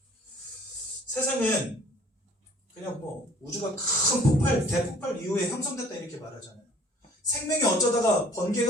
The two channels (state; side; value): normal; both; correlation 0.53